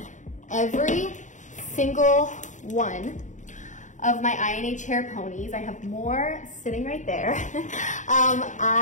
every single one of my INH hair ponies. I have more sitting right there.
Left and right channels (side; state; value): right; late; 0.36 ms